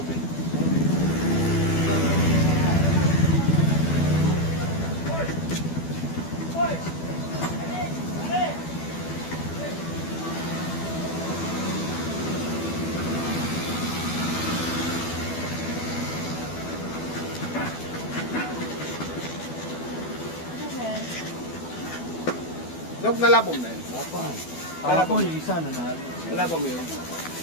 Nog, nalabom na yun. Ako yung isa na natin. Nalabom mo yun.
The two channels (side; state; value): right; late; 12 ms